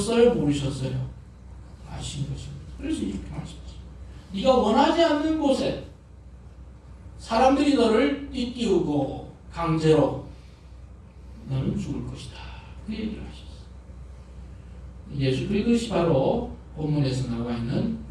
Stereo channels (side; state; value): both; identical; correlation 1.00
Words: 모르셨어요? 아신 것입니다. 그래서 이렇게 말씀하셨어요. 네가 원하지 않는 곳에 사람들이 너를 띠띠우고 강제로 너는 죽을 것이다. 그 얘기를 하셨어요. 예수 그것이 바로 본문에서 나와 있는